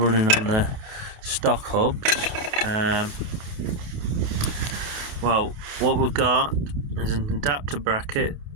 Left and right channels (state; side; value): late; left; 29 ms